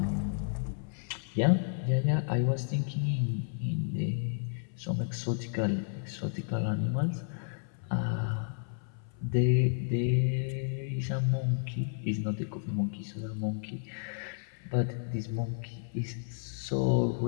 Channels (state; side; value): silent; right; 56 dB below the other